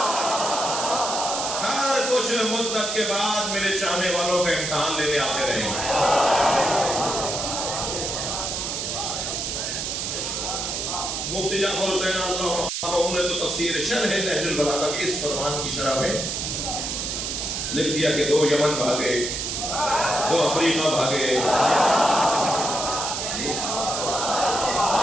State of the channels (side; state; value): right; noise; hiss, 3 dB below the sound